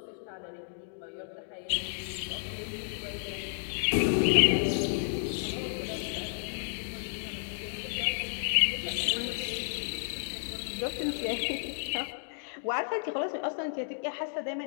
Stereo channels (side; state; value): right; silent; digital silence